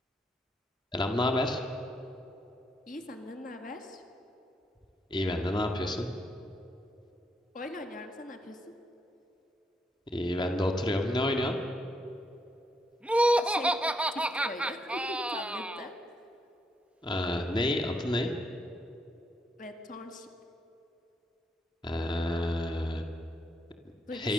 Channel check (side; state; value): both; normal; correlation 0.77